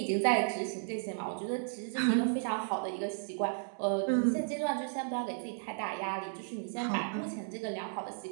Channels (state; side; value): silent; left; digital silence